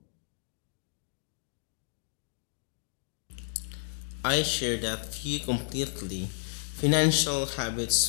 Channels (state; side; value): silent; right; digital silence